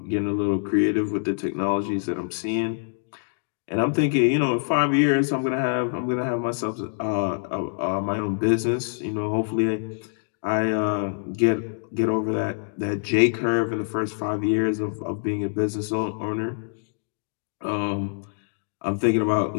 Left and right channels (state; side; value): silent; right; digital silence